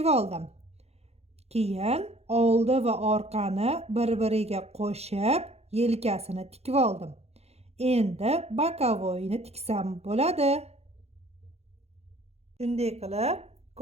oldim. Keyin oldi va orqani bir-biriga qo'shib, yelkasini tikib oldim. Endi bokovoyni tiksam bo'ladi. Shunday qilib,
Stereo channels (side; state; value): left; late; 0.30 ms